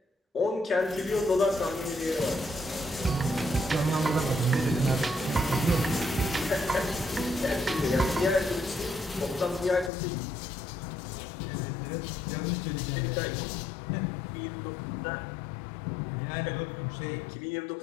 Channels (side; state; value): right; drops out; at 9.9 s